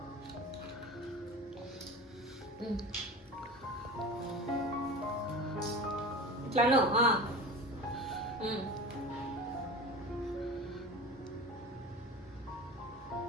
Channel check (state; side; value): normal; both; correlation 0.33